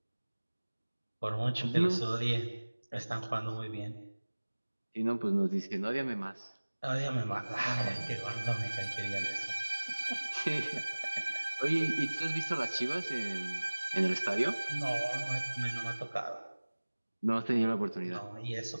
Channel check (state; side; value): inverted; both; correlation -1.00